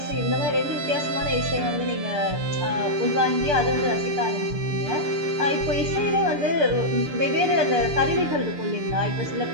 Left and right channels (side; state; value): left; late; 6.9 ms